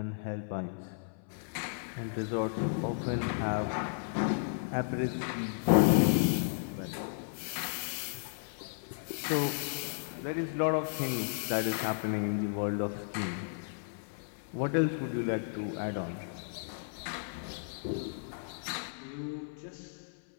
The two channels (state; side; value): silent; right; 55 dB below the other